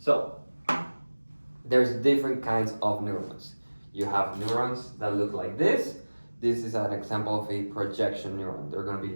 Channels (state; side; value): inverted; both; correlation -1.00